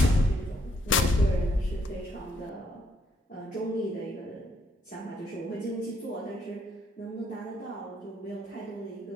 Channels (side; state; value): both; normal; correlation 0.72